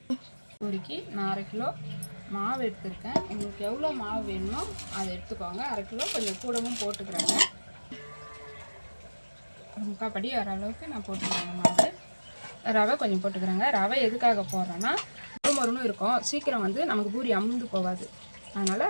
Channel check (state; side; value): inverted; both; correlation -1.00